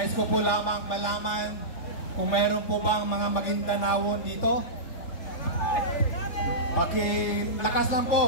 ko po lamang malaman kung meron po bang mga Maguindanaon dito. Pakilakas lang po,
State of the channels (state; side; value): late; right; 3.5 ms